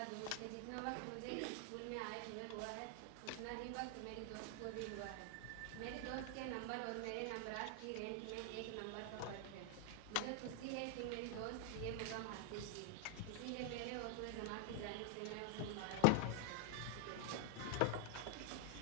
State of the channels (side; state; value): both; different; correlation 0.00